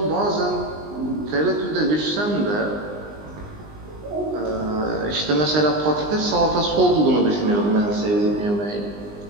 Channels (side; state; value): left; late; 19 ms